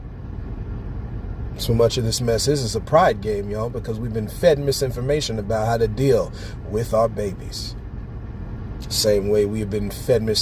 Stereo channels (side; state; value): both; identical; correlation 1.00